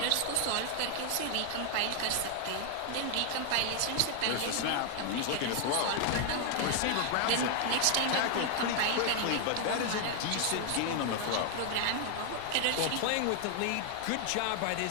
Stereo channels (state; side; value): different; both; correlation 0.00